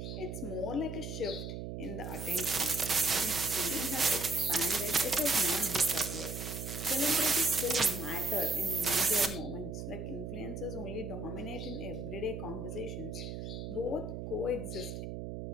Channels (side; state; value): right; noise; hum, 6 dB below the sound